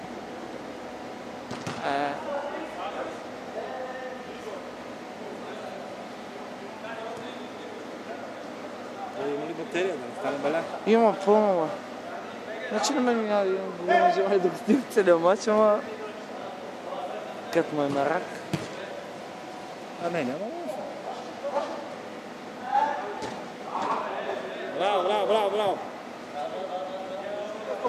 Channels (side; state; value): both; identical; correlation 1.00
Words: Има ли батерия, да не стане беля? Има пълно, бе. Значи на мен няма да имам голяма желание да го снимам целият мач, ама... Като му е на рак. Не, няма лошо. Браво, браво, браво, браво!